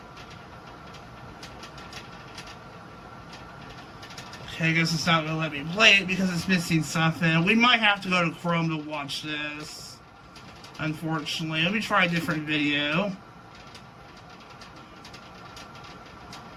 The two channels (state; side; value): identical; both; correlation 1.00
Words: Okay, I guess it's not going to let me play it because it's missing something. We might have to go to Chrome to watch this, unfortunately. Let me try a different video.